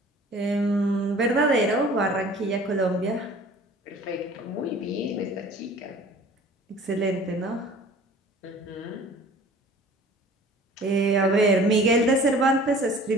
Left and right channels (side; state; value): both; normal; correlation 0.47